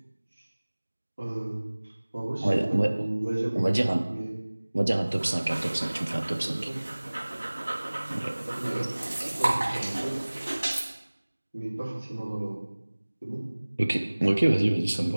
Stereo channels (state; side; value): inverted; both; correlation -1.00